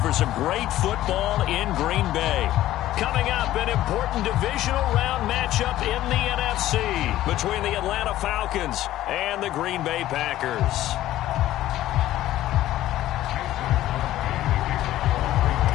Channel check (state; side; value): quieter; right; 14.2 dB